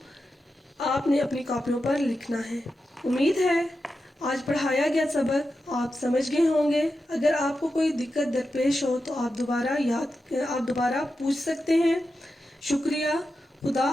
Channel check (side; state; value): both; normal; correlation 0.90